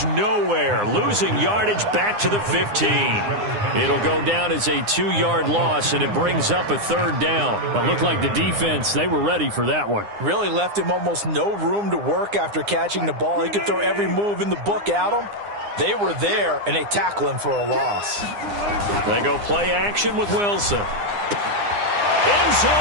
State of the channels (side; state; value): left; late; 9.8 ms